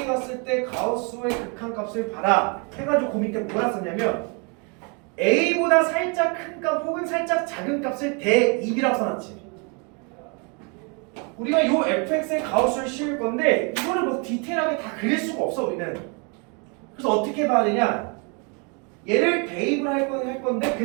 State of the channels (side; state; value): left; quieter; 34.1 dB